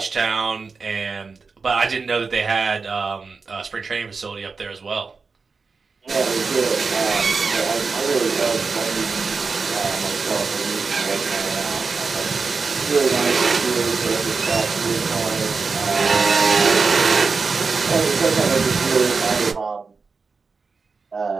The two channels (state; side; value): quieter; left; 4.7 dB